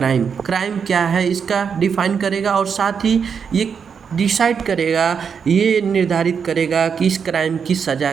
क्या है, इसका डिफाइन करेगा। और साथ ही ये डिसाइड करेगा, ये निर्धारित करेगा कि इस क्राइम की सज़ा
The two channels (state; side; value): quieter; left; 6.6 dB